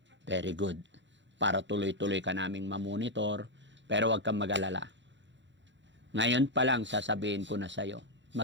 Very good. Para tuloy-tuloy ka naming mamonitor, pero wag kang mag-alala. Ngayon pa lang, sasabihin ko na sa'yo,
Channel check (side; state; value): left; late; 0.53 ms